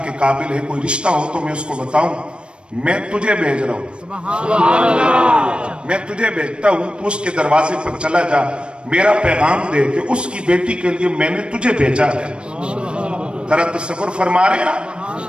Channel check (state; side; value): late; left; 0.056 ms